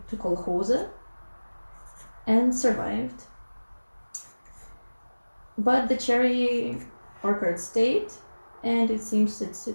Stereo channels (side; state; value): both; inverted; correlation -1.00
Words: to kolkhoze and survived. But the cherry orchard stayed, and it seems it